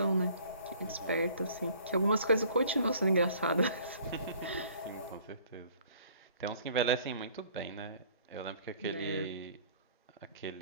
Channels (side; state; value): both; inverted; correlation -0.55